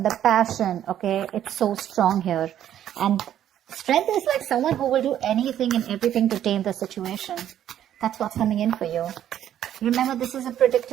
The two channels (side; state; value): left; quieter; 10.9 dB